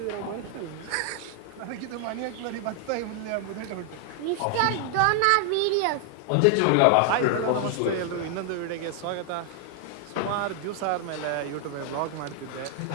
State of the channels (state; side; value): different; both; correlation 0.00